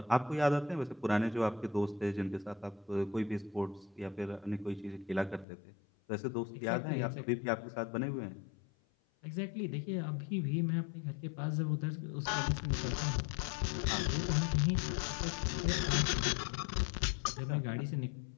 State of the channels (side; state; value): right; drops out; at 5.5 s